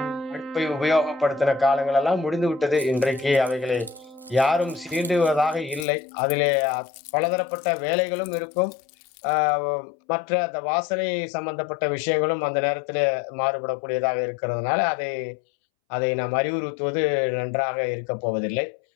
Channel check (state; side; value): drops out; right; at 5.9 s